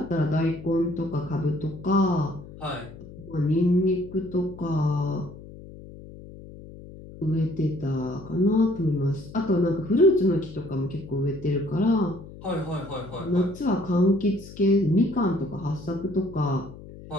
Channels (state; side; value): noise; left; hum, 16 dB below the sound